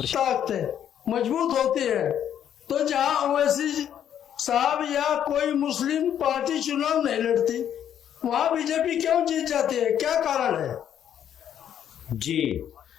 शेयर मजबूत होती है। तो जहाँ ओवैसी साहब या कोई मुस्लिम पार्टी चुनाव नहीं लड़ती, वहाँ बीजेपी क्यों जीत जाती है? क्या कारण है? जी,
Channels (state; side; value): quieter; right; 9.8 dB